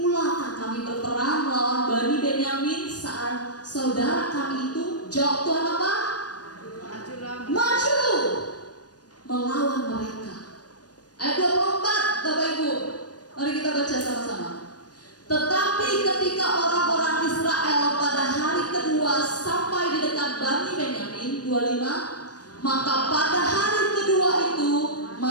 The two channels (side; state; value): right; late; 0.69 ms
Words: kami berperang melawan Bani Benyamin saat saudara kami itu? Jawab Tuhan apa? Maju melawan mereka. Ayat 24, Bapak Ibu, mari kita baca sama-sama. Tetapi ketika orang-orang Israel pada hari kedua sampai di dekat Bani Benyamin, 25, maka pada hari kedua itu